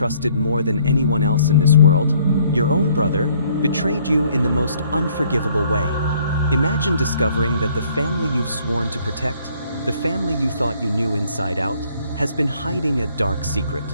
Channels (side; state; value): both; inverted; correlation -0.63